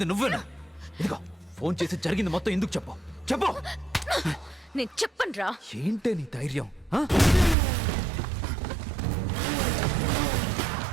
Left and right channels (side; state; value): left; drops out; at 7.6 s